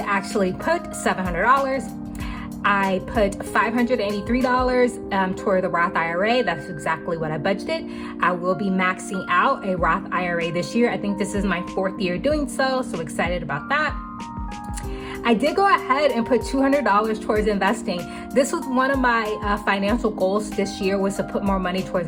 put $700. I put $583 toward the Roth IRA. That's exactly what I budgeted. I will be maxing out a Roth IRA this year. I think this is my 4th year doing so excited about that. I did go ahead and put $200 towards investing. This was one of my financial goals this year, was to put more money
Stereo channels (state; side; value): identical; both; correlation 1.00